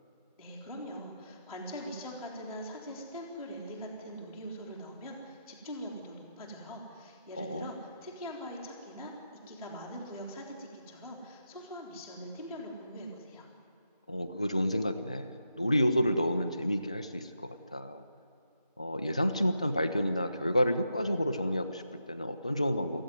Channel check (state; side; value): inverted; both; correlation -0.84